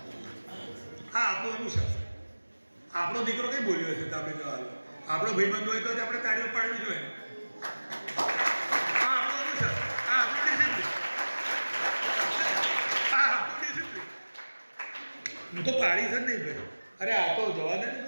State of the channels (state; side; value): inverted; both; correlation -1.00